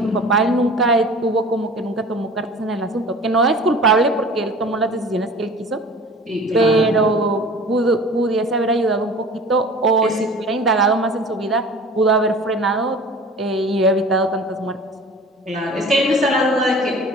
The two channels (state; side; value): normal; both; correlation 0.42